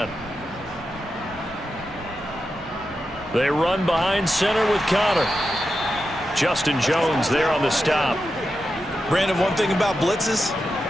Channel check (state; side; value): normal; both; correlation 0.89